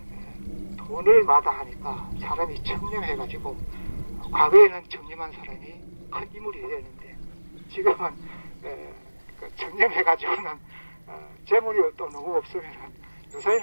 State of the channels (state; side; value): inverted; both; correlation -1.00